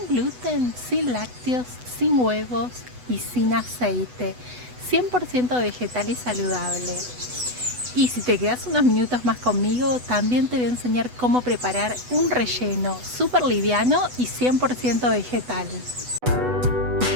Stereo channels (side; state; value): left; late; 8.1 ms